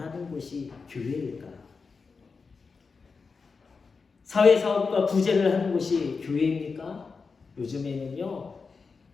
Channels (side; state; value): right; quieter; 4.8 dB